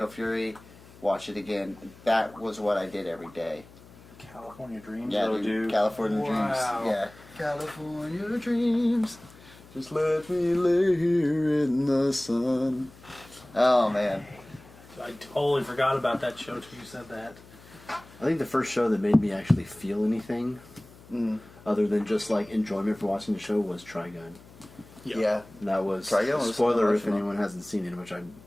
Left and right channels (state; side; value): noise; left; hum, 22 dB below the sound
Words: Fury, watch it again. That was what I did every day. California Dreams. Yeah, though, dude, California Dreams. Yeah, California Dreams. Just let me lay here in the sun. Oh, man. I totally forgot about that show till you said that. I think the first show that made me actually feel anything, other than just like enjoyment for watching the show, was Trigun. Yeah. And that was Trigun was spoiler if emotional. anyone hasn't seen it, which I